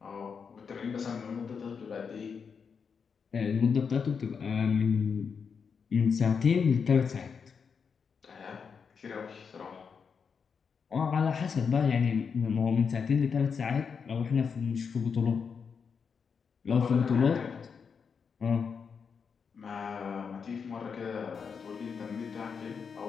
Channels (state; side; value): quieter; right; 6.1 dB